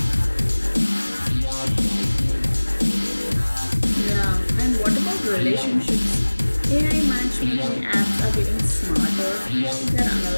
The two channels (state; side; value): inverted; both; correlation -1.00